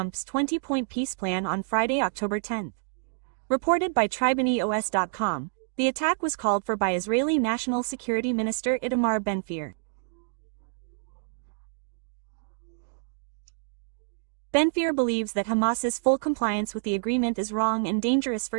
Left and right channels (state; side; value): silent; left; digital silence